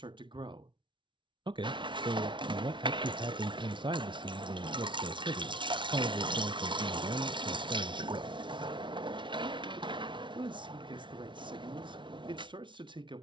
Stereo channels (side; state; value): left; late; 0.24 ms